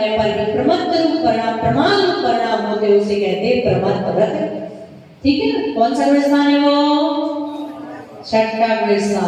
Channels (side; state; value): both; identical; correlation 1.00